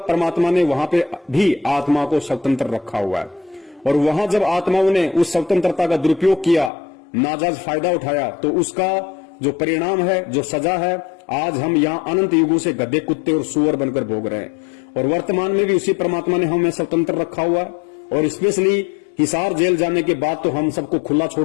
परमात्मा ने वहां पे भी आत्मा को स्वतंत्र रखा हुआ है। और वहां जब आत्माओं ने उस स्वतंत्रता का दुरुपयोग किया, नाजायज फायदा उठाया, तो उसका जो परिणाम है, जो सजा है, आज हम यहाँ अनंत युगों से गधे, कुत्ते और सुअर बनकर भोग रहे हैं। और वर्तमान में भी उसी परमात्मा ने हमें स्वतंत्र रखा हुआ है। और स्पेशली हिसार जेल जाने के बाद तो हम सबको खुला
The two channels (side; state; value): right; drops out; at 6.7 s